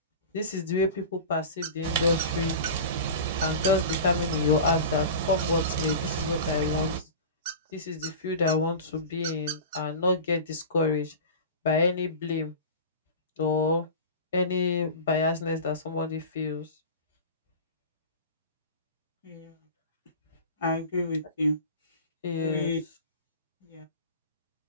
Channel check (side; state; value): both; inverted; correlation -0.32